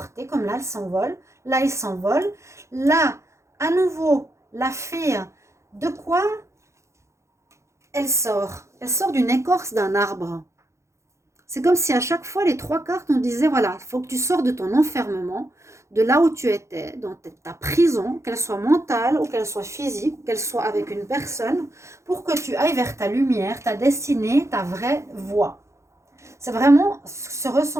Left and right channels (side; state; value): left; late; 0.14 ms